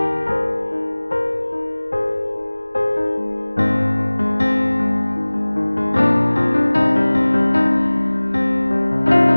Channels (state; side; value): inverted; both; correlation -1.00